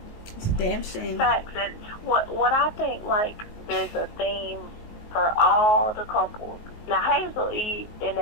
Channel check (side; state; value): right; late; 19 ms